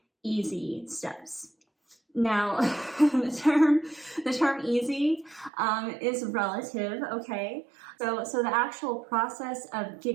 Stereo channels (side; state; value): left; drops out; at 5.5 s